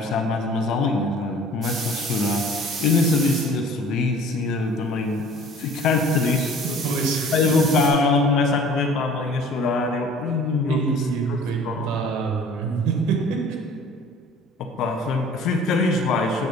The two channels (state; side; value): normal; both; correlation 0.49